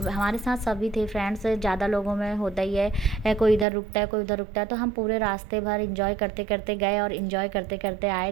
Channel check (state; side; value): drops out; left; at 3.7 s